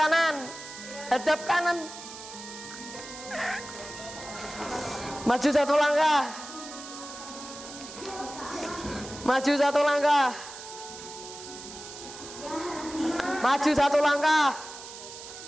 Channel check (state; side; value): noise; right; hiss, 13 dB below the sound